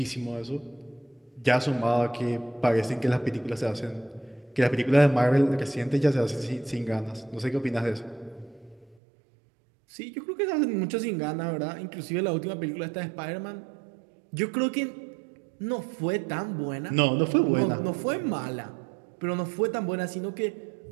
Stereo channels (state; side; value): drops out; left; at 9.0 s